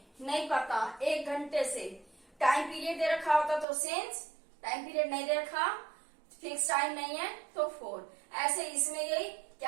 नहीं पता, 1 घंटे से। टाइम पीरियड दे रखा होता तो सिंस, टाइम पीरियड नहीं दे रखा, फिक्स टाइम नहीं है तो फॉर। ऐसे इसमें यही,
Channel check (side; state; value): left; drops out; at 3.7 s